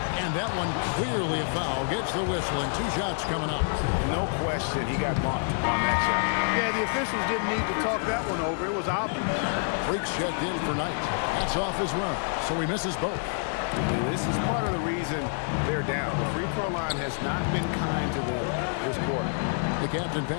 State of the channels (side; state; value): right; silent; 60 dB below the other